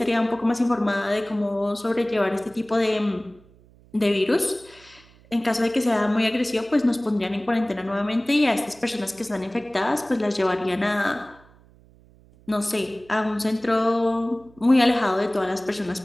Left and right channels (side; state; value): right; noise; hum, 27 dB below the sound